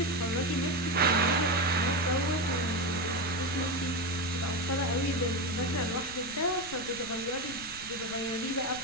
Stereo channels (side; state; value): left; noise; rumble, 18 dB below the sound